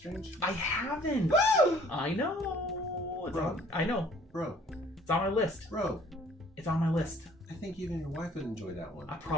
I haven't. I know. I know. Bro. It's on my list. Bro. It's on my list. I think even your wife would enjoy that one.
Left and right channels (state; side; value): normal; both; correlation 0.56